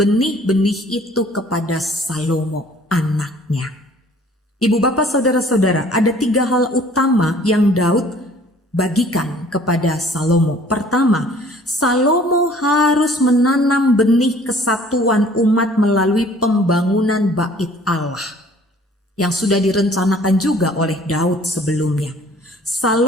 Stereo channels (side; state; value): both; normal; correlation 0.54